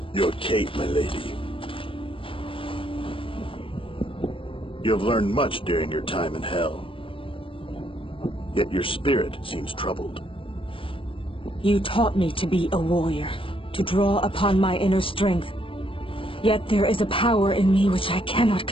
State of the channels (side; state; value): right; late; 0.26 ms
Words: Your Kate, my lady. You have learned much during your time in hell. Yet your spirit seems troubled. You taught me to be a warrior, to draw upon my inner strength. Yet there is a power in me which I cannot